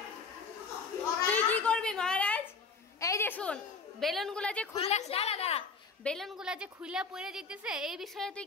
তুই কি করবি মহারাজ? এই যে শুন, বেলুনগুলা যে খুইলা দাঁড়া বেলুনগুলা যে খুইলা পড়ে যেতেছে, এই বিষয়ে তুই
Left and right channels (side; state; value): right; quieter; 4.7 dB